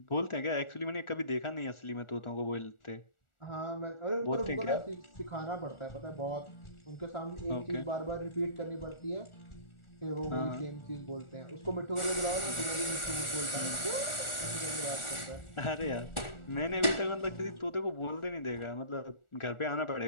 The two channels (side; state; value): right; late; 1.4 ms